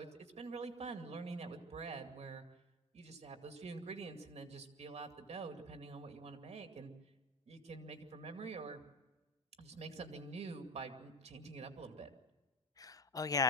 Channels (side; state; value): both; normal; correlation 0.21